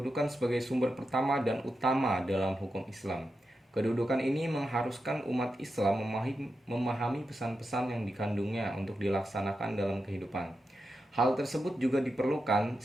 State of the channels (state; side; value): normal; both; correlation 0.88